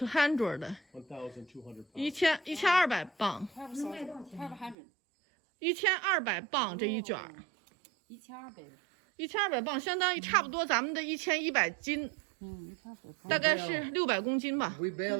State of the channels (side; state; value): left; drops out; at 4.8 s